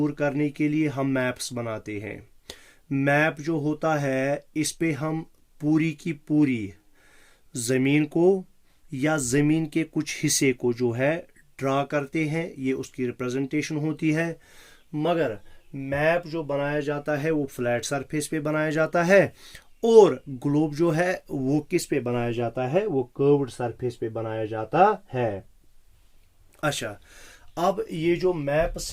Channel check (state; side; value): identical; both; correlation 1.00